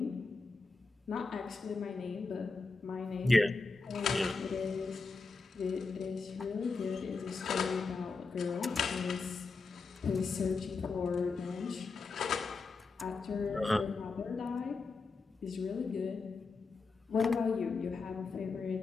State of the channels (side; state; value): right; quieter; 4.2 dB